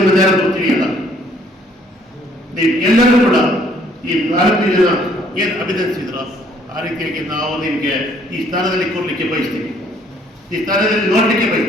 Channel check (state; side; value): normal; both; correlation 0.63